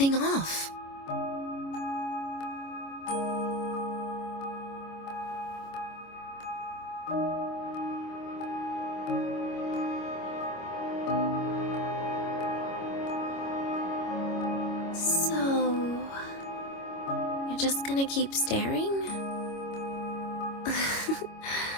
off. Just gonna keep staring?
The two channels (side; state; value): right; late; 25 ms